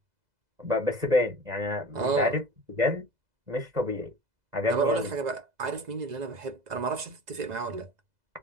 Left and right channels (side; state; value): left; late; 2.0 ms